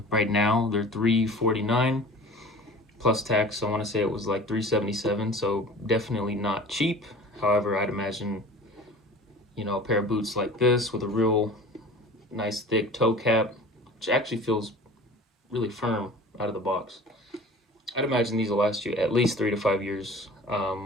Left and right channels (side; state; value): both; normal; correlation 0.42